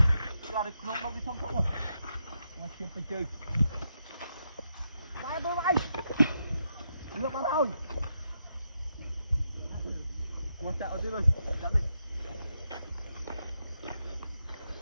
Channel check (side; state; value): both; inverted; correlation -0.82